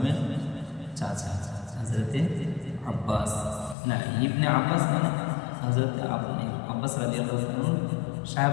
চাচা হযরতে আব্বাস, না ইবনে আব্বাস মানে হযরতে আব্বাস রাদিয়াল্লাহু আনহু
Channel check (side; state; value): right; drops out; at 3.8 s